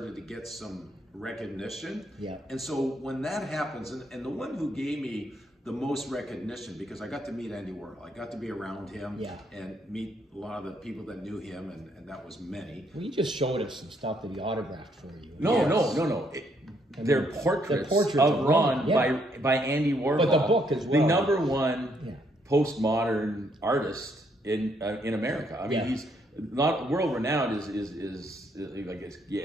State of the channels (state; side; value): normal; both; correlation 0.71